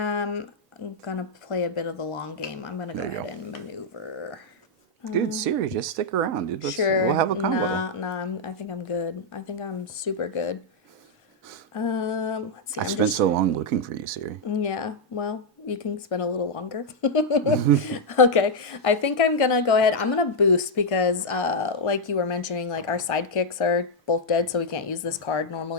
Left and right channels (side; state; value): both; normal; correlation -0.03